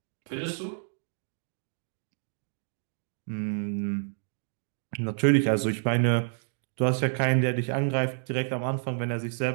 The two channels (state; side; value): silent; left; digital silence